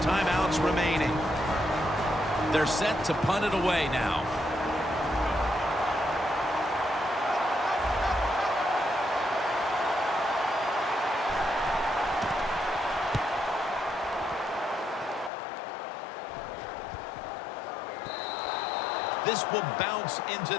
timeouts remaining. They're set to punt it away now. This will bounce into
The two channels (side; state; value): right; drops out; at 15.3 s